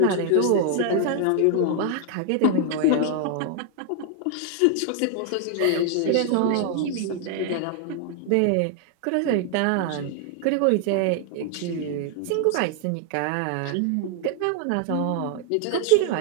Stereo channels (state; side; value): different; both; correlation 0.00